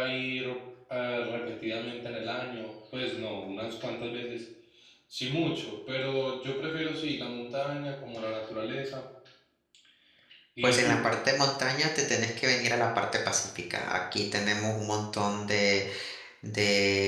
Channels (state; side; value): identical; both; correlation 1.00